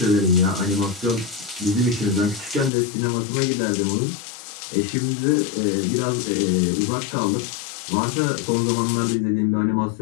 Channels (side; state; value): right; drops out; at 2.7 s